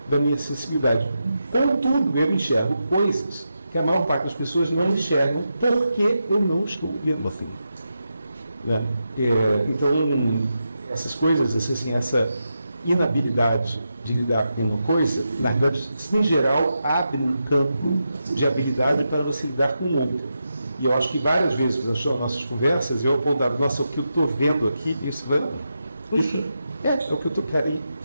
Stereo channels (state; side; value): inverted; both; correlation -0.87